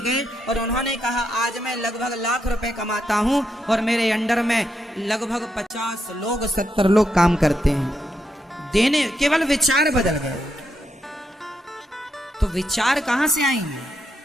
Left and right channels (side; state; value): both; normal; correlation 0.81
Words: गए और उन्होंने कहा आज मैं लगभग लाख रुपए कमाता हूं और मेरे अंडर में लगभग 50 लोग 70 लोग काम करते हैं। देने, केवल विचार बदल गए। तो विचार कहां से आएंगे?